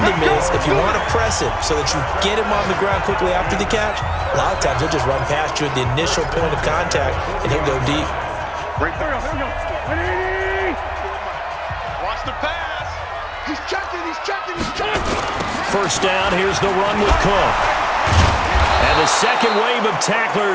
him is if you want to press him so that you get him on the ground quickly after the catch, a lot of times he'll just run past you at the initial point of contact, and he'll go deep. Watch the pass. He's checking. First down, here's the run with Cook. And the second wave of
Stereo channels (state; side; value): identical; both; correlation 1.00